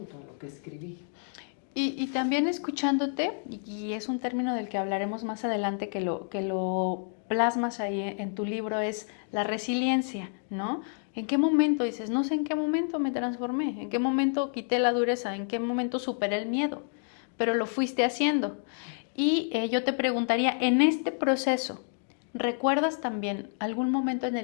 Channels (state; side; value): silent; right; 58 dB below the other